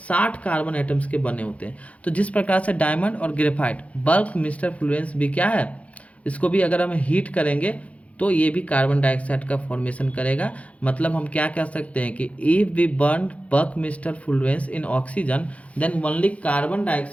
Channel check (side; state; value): right; late; 0.065 ms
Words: 60 कार्बन एटम्स के बने होते हैं। तो जिस प्रकार से डायमंड और ग्रेफाइट, बकमिस्टर फ्लोरेंस भी क्या है, इसको भी अगर हम हीट करेंगे तो ये भी कार्बन डाइऑक्साइड का फॉर्मेशन करेगा। मतलब हम क्या कह सकते हैं कि if we burn buckminsterfullerene in oxygen then only carbon